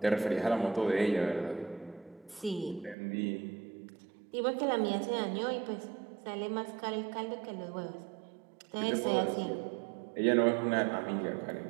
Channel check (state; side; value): drops out; left; at 3.0 s